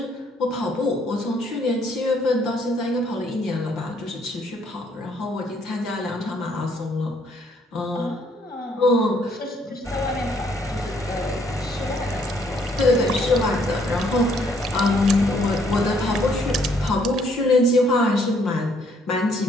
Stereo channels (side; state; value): both; normal; correlation 0.67